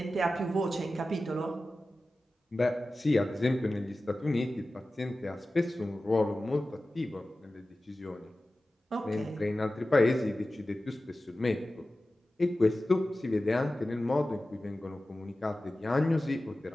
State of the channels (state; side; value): normal; both; correlation 0.95